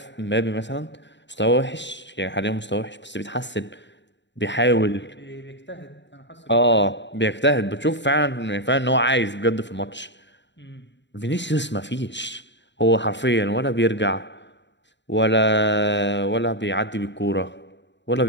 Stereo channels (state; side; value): late; right; 0.52 ms